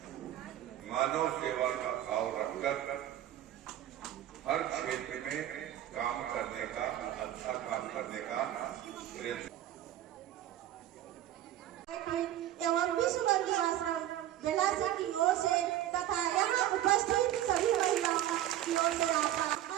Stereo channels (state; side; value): quieter; left; 12.7 dB